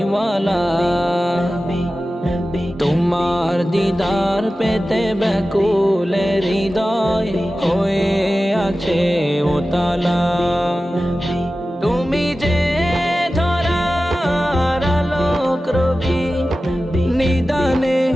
তোমার দিদার পেতে ব্যাকুলে হৃদয় হয়ে আছে উতালা। তুমি যে ধরার আলোক রবি, নিদানে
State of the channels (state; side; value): normal; both; correlation 0.95